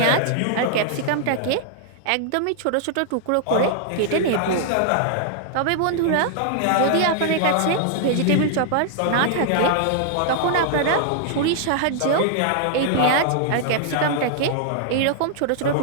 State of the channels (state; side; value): different; both; correlation -0.01